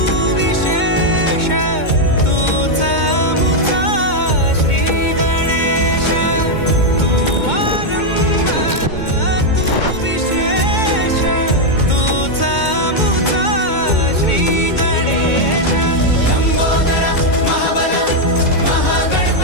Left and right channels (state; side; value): late; right; 2.2 ms